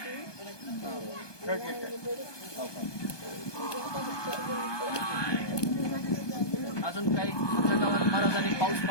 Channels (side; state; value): right; late; 1.2 ms